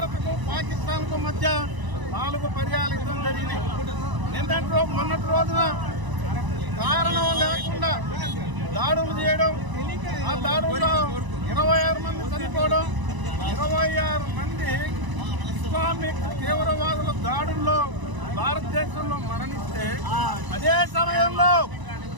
పాకిస్తాన్కు మధ్య 4 పర్యాలు యుద్ధం జరిగినాయి. మొన్నటి రోజున కారణం లేకుండా దాడులు చేయడం, ఆ దాడుల్లో 26 మంది చనిపోవడం, 26 మంది ఇస్లామిక్ తీవ్రవాదుల దాడుల్లో భారతదేశంలో మరణిస్తే అదే సమయంలో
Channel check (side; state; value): left; late; 1.0 ms